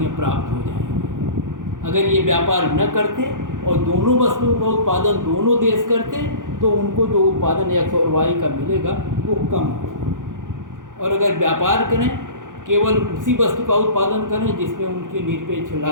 प्राप्त हो जाएंगी। अगर ये व्यापार न करते और दोनों वस्तुओं का उत्पादन दोनों देश करते तो उनको जो उत्पादन एक्स और वाई का मिलेगा वो कम होगा। और अगर व्यापार करें, केवल उसी वस्तु का उत्पादन करें जिसमें उनकी निरपेक्ष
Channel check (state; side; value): late; left; 0.88 ms